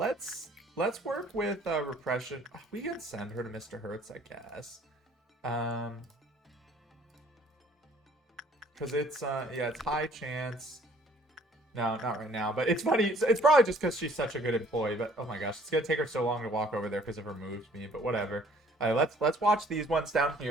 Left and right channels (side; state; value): both; normal; correlation 0.58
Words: work with repression. We can send her to Mr. Hertz, I guess. Because it's, yeah, it's high chance. No, not right now. But it's funny. It's probably just because she's such a good employee. But, oh my gosh, it's going to take her so long to walk over there because of her move speed. But whatever. All right, let's watch these ones down